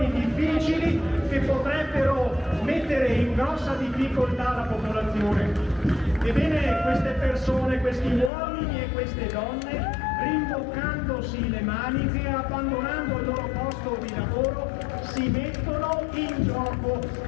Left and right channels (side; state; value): right; drops out; at 8.3 s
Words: difficili che potrebbero mettere in grossa difficoltà la popolazione. Ebbene, queste persone, questi uomini e queste donne, rimboccandosi le maniche, abbandonando il loro posto di lavoro, si mettono in gioco,